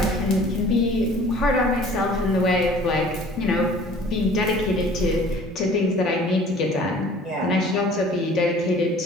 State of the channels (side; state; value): both; normal; correlation 0.50